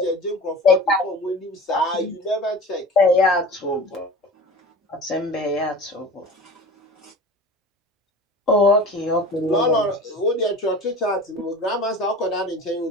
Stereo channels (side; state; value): both; normal; correlation 0.37